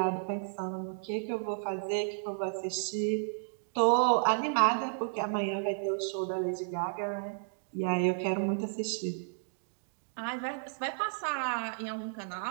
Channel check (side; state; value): left; silent; digital silence